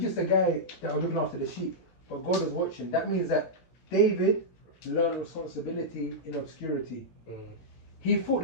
just a guy that was looking after the sheep. But God was watching. That means that David learned responsibility in obscurity. He fought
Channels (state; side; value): late; right; 17 ms